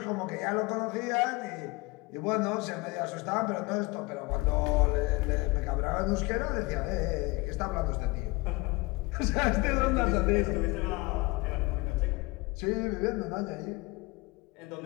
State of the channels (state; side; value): quieter; right; 24.5 dB